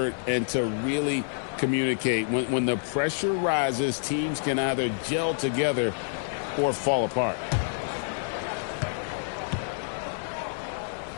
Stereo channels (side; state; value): right; silent; digital silence